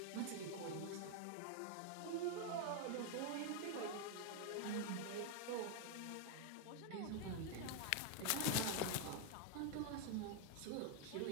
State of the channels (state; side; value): different; both; correlation 0.00